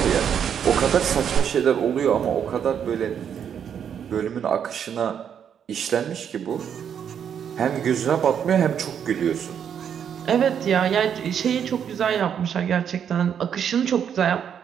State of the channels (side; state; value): left; quieter; 8.3 dB